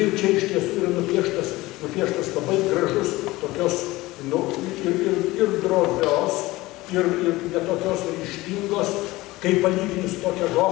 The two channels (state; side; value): quieter; right; 19.4 dB